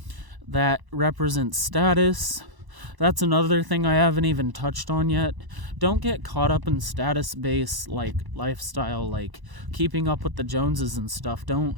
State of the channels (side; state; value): left; late; 1.0 ms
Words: that represents status. That's another thing I haven't even touched on yet. Don't get caught up in status-based lifestyle, keeping up with the Joneses and stuff. Don't